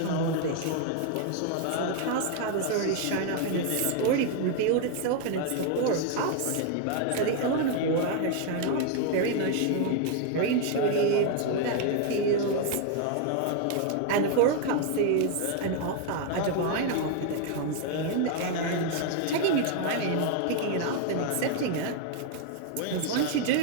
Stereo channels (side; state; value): both; different; correlation 0.00